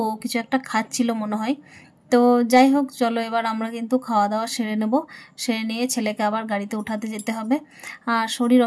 কিছু একটা খাচ্ছিল মনে হয়। তো যাই হোক, চলো এবার আমরা কিন্তু খাওয়া দাওয়া সেরে নেব। সেরে নিয়ে ছেলেকে আবার গাড়িতে উঠাতে যেতে হবে। আর শরীর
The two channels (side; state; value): both; identical; correlation 1.00